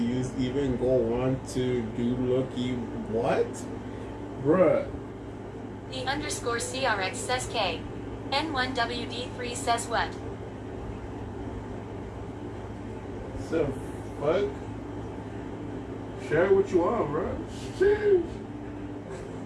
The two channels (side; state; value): both; identical; correlation 1.00